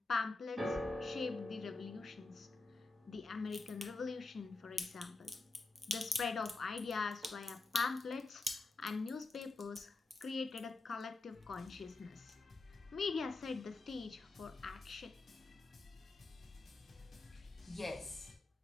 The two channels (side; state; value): right; quieter; 3.3 dB